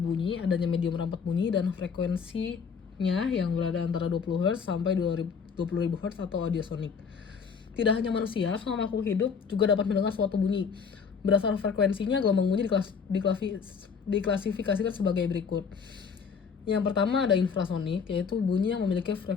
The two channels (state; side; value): quieter; right; 6.1 dB